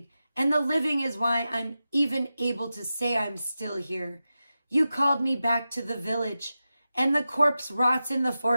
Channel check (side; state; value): both; inverted; correlation -0.93